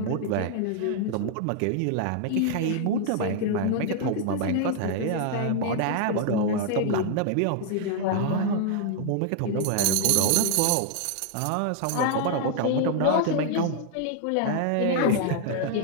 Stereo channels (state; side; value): different; both; correlation 0.00